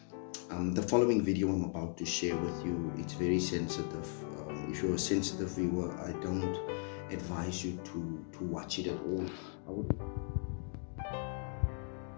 The following video I'm about to share with you, it's very sensitive. If you're a sensitive viewer, I don't advise you to watch it at all. I would also like to say, I do not know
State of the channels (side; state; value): right; silent; 53 dB below the other